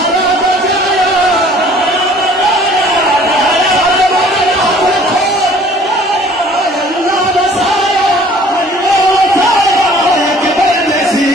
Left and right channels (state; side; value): normal; both; correlation 0.53